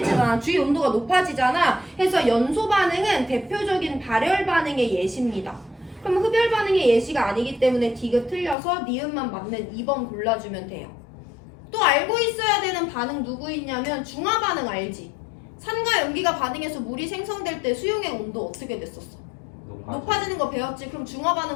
주위 온도가 높아지잖아. 해서 연소 반응은 대표적인 발열 반응의 예시입니다. 그럼 흡열 반응의 예시가 아니기 때문에 디귿 틀려서 니은만 맞는 2번 골라주면 돼요. 또 알고 있어야 되는 반응 누구 있냐면 중화 반응 알지? 산과 염기가 반응해서 물이 생성될 때 수용의 온도 어떻게 됐었어? 높아지는 거 배웠지? 그럼 중화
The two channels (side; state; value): right; drops out; at 8.6 s